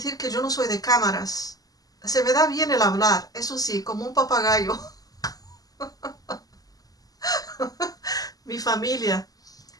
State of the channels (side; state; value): right; late; 0.18 ms